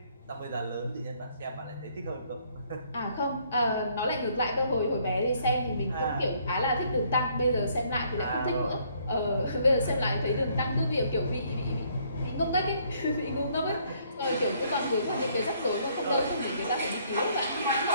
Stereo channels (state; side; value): inverted; both; correlation -0.66